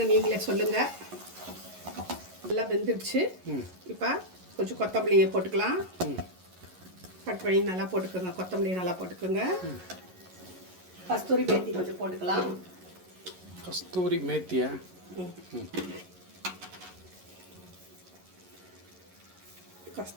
நீங்களே சொல்லுங்கள். நல்லா வெந்துடுச்சு. இப்போ கொஞ்சம் கொத்தமல்லியை போட்டுக்கலாம். கட் பண்ணி நல்லா போட்டுக்கோங்க. கொத்தமல்லி நல்லா போட்டுக்கோங்க. கஸ்தூரி மேத்தி கொஞ்சம் போட்டுக்கலாம். கஸ்தூரி மேத்தியா?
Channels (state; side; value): late; left; 11 ms